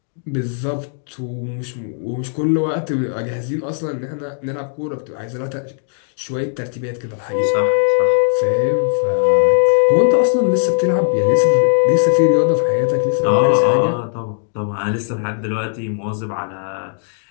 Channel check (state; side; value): silent; right; digital silence